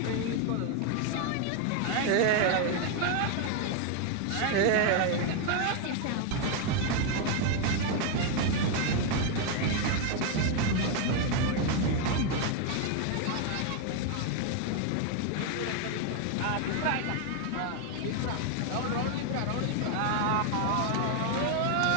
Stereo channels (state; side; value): different; both; correlation 0.01